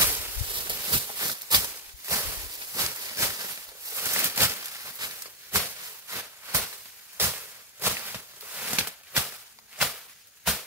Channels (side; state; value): both; normal; correlation 0.03